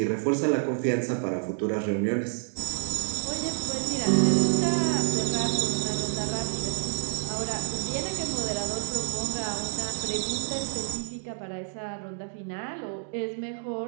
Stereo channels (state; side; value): silent; left; digital silence